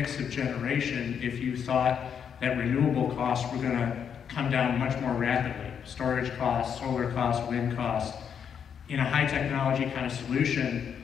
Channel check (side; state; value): right; quieter; 7.7 dB